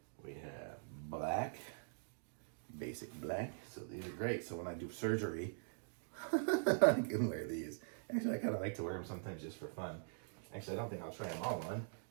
We have black, basic black. So these are great. So when I do surgery, I can wear these. Actually, I kind of like to wear them sometimes just for fun. Actually, I don't think I'll try them all on,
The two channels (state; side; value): silent; left; digital silence